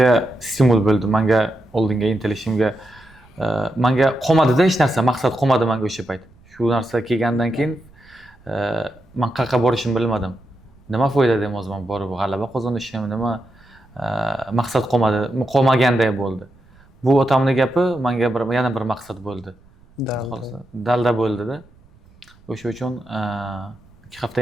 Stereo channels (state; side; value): noise; right; rumble, 28 dB below the sound